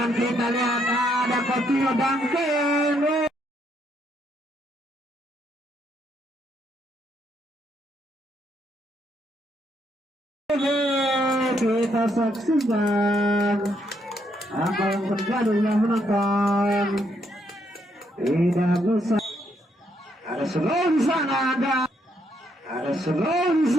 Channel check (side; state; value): both; normal; correlation 0.74